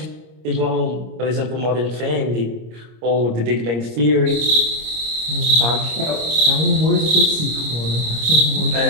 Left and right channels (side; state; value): left; late; 25 ms